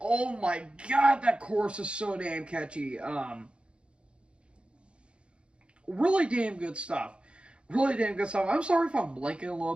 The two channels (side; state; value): left; late; 0.057 ms